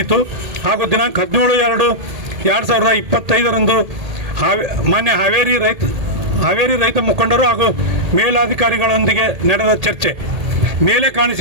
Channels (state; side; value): late; left; 1.8 ms